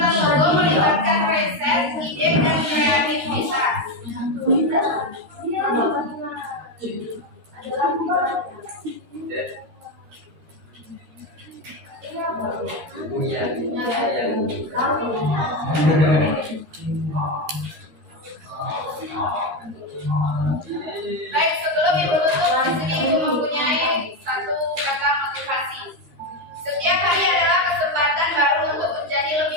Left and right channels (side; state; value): left; late; 13 ms